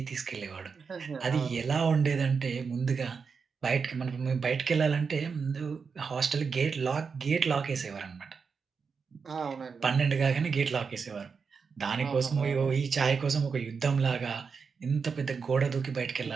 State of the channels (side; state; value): left; quieter; 5.5 dB